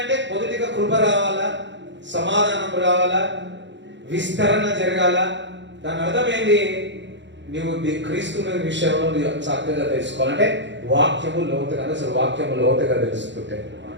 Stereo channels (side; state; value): left; late; 0.53 ms